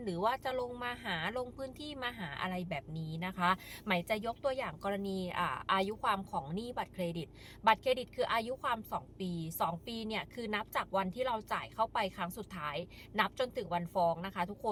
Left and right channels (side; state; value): both; identical; correlation 1.00